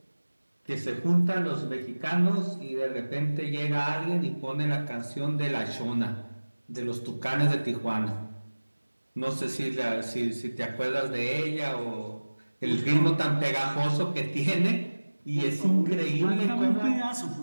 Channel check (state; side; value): inverted; both; correlation -1.00